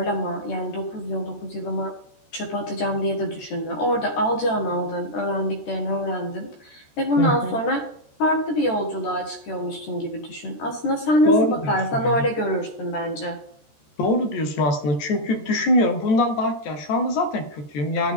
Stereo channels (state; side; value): late; right; 13 ms